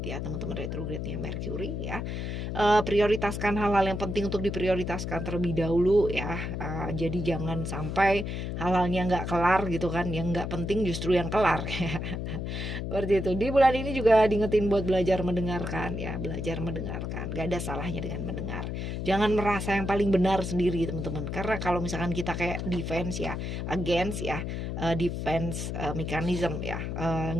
teman-teman, retrograde-nya Mercury ya. Prioritaskan hal-hal yang penting untuk diprioritaskan terlebih dahulu ya. Jadi jangan sampai hal-halnya nggak kelar gitu kan, yang nggak penting justru yang kelar. Seperti itu. Di bulan ini juga diingetin buat belajar mendengarkan ya, belajar mendengarkan. Gak ada salahnya dengan mendengar. Jangan merasa yang paling benar sendiri, teman-teman. Karena kalau misalkan kita kayak defense ya, against ya, defense mechanism ya,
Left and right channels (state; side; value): noise; left; hum, 4 dB below the sound